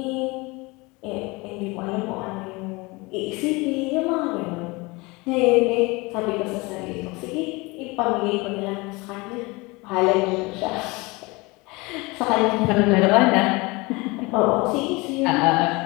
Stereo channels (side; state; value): right; quieter; 24.8 dB